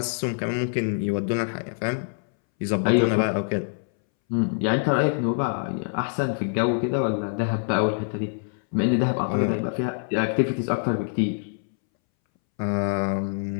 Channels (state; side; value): silent; right; 62 dB below the other